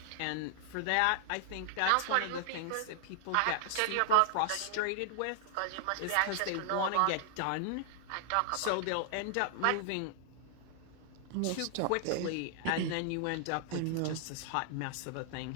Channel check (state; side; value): different; both; correlation 0.00